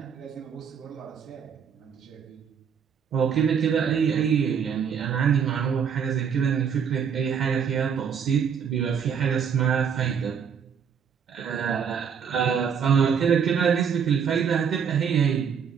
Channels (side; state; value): left; quieter; 7.3 dB